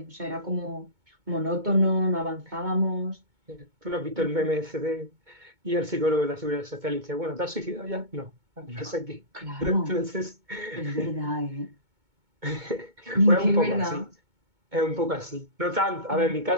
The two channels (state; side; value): late; left; 2.2 ms